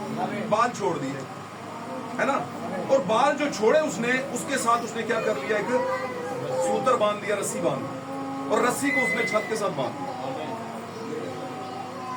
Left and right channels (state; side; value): identical; both; correlation 1.00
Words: بال چھوڑ دیے, ہے نا, اور بال جو چھوڑے اس نے, اس کے ساتھ اس نے کیا کر لیا, ایک سوتر باندھ دیا, رسی باندھ دی, اور رسی کو اس نے چھت کے ساتھ باندھ دیا